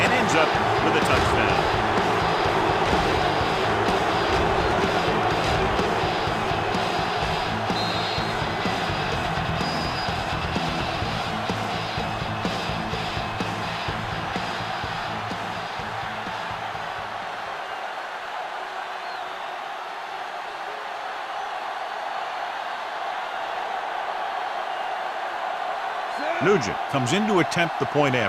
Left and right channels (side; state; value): both; identical; correlation 1.00